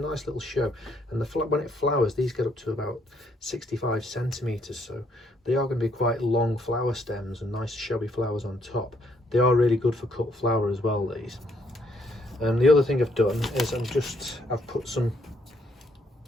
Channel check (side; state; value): both; normal; correlation 0.70